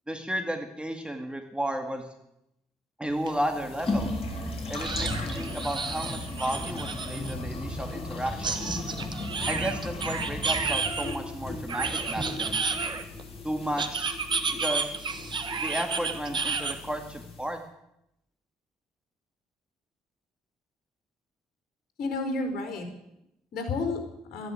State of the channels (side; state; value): both; normal; correlation 0.56